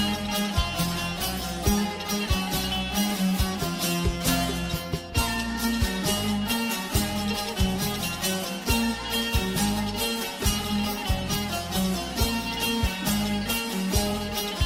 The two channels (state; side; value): identical; both; correlation 1.00